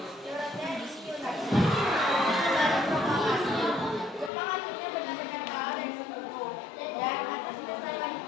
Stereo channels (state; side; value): drops out; right; at 4.3 s